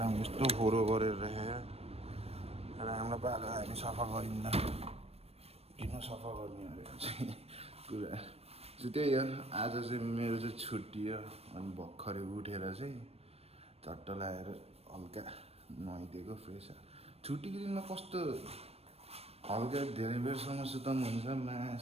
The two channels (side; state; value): left; late; 0.29 ms